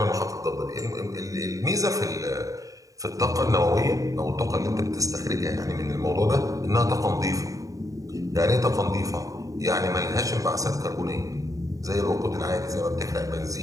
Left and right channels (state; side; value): late; left; 0.16 ms